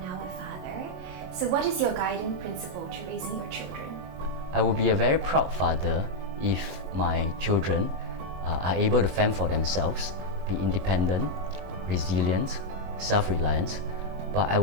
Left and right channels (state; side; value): late; left; 22 ms